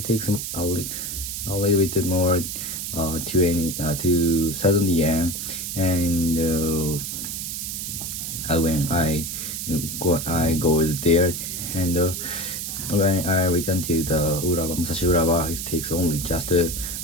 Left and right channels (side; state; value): right; noise; hiss, 5 dB below the sound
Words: bit more 2,000 yen, and when I go there, and when I return to the Musashi Urawa, it takes only just